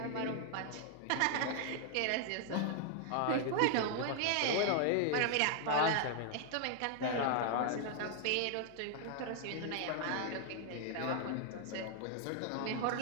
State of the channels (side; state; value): both; different; correlation 0.00